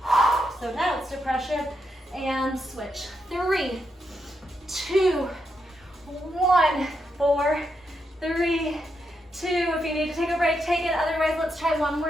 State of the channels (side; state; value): both; normal; correlation 0.82